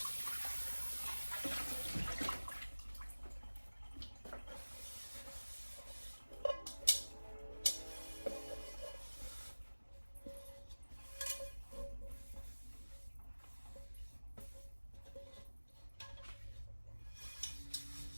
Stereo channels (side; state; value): both; inverted; correlation -1.00